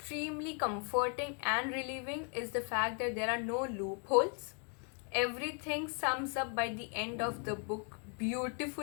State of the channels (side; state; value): right; quieter; 39.6 dB